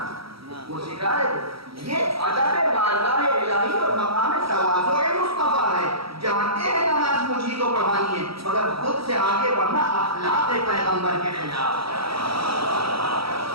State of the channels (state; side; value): late; left; 0.75 ms